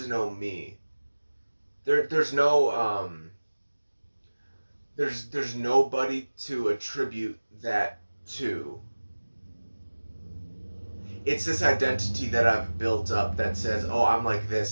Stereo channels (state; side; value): inverted; both; correlation -1.00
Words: no me. There's no, there's nobody to attribute that to. It's this identity that I've built up that says, oh, I'm like